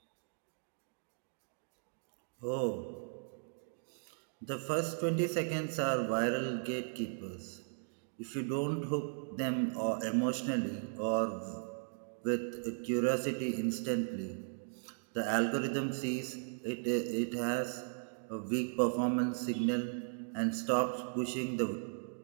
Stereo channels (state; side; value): silent; left; digital silence